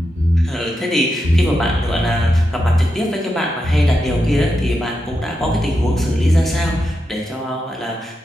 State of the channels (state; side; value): normal; both; correlation 0.87